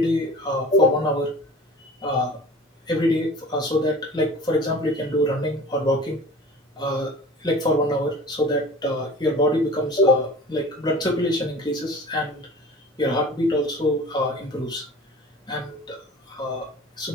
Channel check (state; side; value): normal; both; correlation 0.42